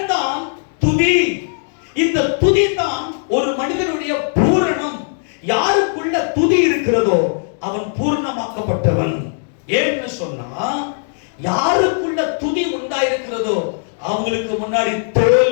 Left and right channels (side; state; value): right; silent; digital silence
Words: தான் துதி. இந்த துதி தான் ஒரு மனிதனுடைய பூரணம். யாருக்குள்ள துதி இருக்கிறதோ அவன் பூர்ணமாக்கப்பட்டவன். ஏன்னு சொன்னா, யாருக்குள்ள துதி உண்டாயிருக்கிறதோ அவங்களுக்கு முன்னாடி